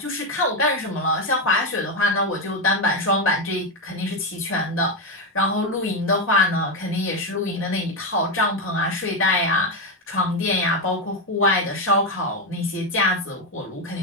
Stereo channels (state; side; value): normal; both; correlation 0.08